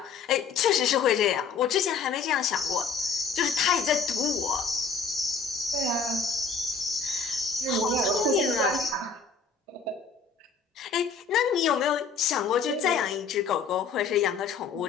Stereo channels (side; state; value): right; quieter; 5.3 dB